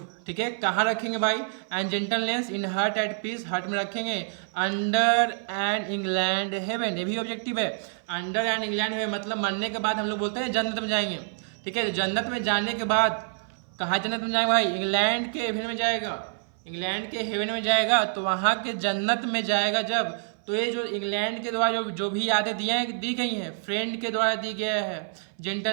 ठीक है। कहाँ रखेंगे भाई, and gentleness in heart at peace, heart में रखेंगे। अंडर एंड इंग्लैंड हेवन, ये भी ऑब्जेक्टिव है। अंडर एंड इंग्लैंड हेवन मतलब मरने के बाद हम लोग बोलते हैं जन्नत में जाएंगे, ठीक है। जन्नत में जाने के बाद कहाँ जन्नत में जाएगा भाई, इंग्लैंड के हेवन में जाएगा, इंग्लैंड के हेवन में जाएगा, तो वहाँ के जन्नत में जाएगा जब, तो ये जो इंग्लैंड के द्वारा जो भी यादें दी गई हैं, फ्रेंड के द्वारा दी गया है,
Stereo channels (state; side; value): silent; left; 57 dB below the other